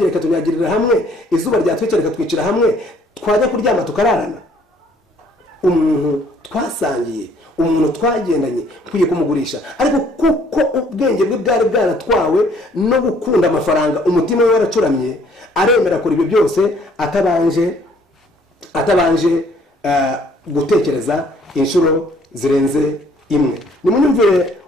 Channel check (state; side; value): normal; both; correlation 0.61